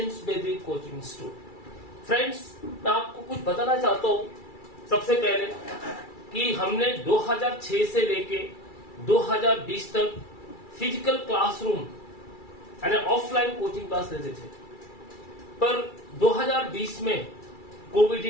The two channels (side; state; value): right; late; 2.3 ms